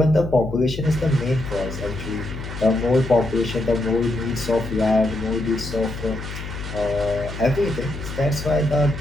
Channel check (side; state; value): left; noise; hum, 9 dB below the sound